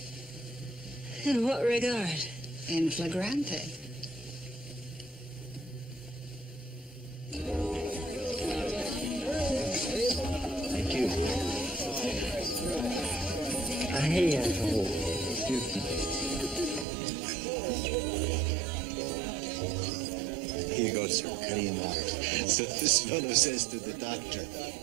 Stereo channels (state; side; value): drops out; left; at 16.9 s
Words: In what regard? In flagrante. Thank you. Here you go, sir. Cutting water. So this fellow says to the doctor,